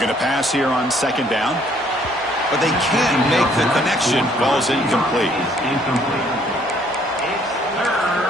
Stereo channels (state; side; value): normal; both; correlation 0.63